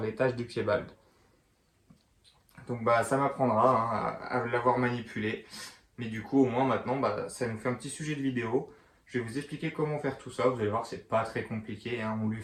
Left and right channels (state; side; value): identical; both; correlation 1.00